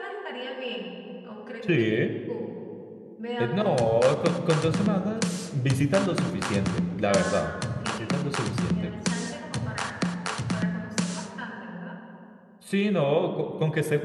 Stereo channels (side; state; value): both; identical; correlation 1.00